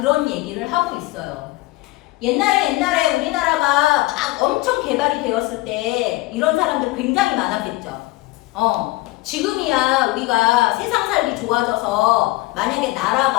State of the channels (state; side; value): quieter; right; 20.1 dB